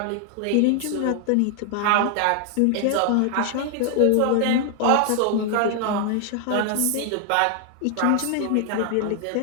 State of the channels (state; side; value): different; both; correlation 0.00